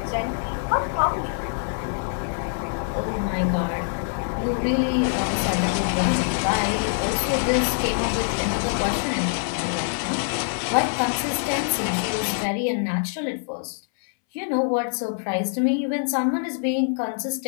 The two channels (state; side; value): silent; right; 62 dB below the other